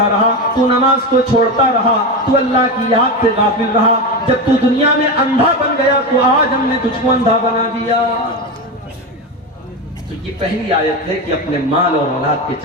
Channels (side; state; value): both; normal; correlation 0.18